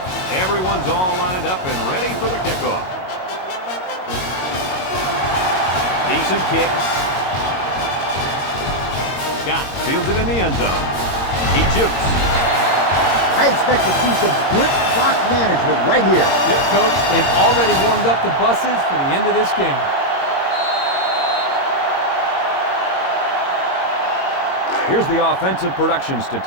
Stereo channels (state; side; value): late; right; 22 ms